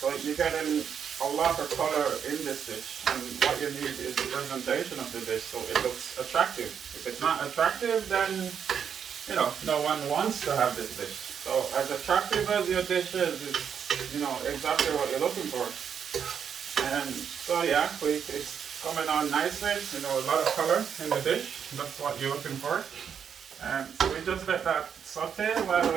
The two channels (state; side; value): quieter; left; 7.6 dB